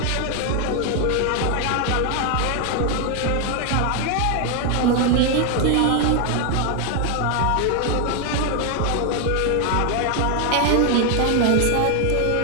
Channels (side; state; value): both; different; correlation 0.01